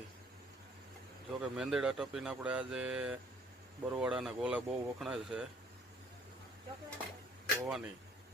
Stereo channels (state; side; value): normal; both; correlation 0.60